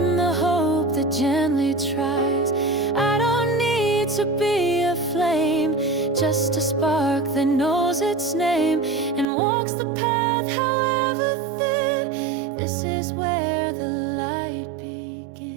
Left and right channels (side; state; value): left; drops out; at 9.2 s